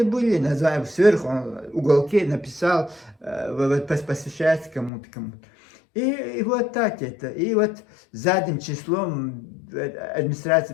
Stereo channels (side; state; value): right; drops out; at 4.9 s